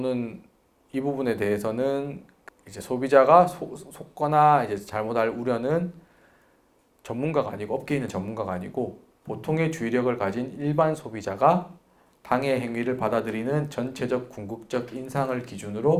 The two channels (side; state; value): both; identical; correlation 1.00